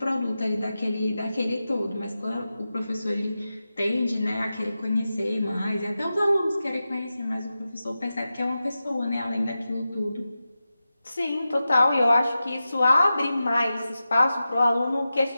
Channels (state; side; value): inverted; both; correlation -0.93